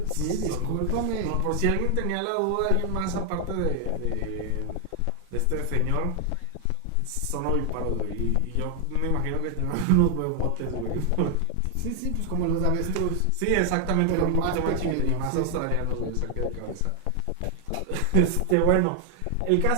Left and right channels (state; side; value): different; both; correlation 0.00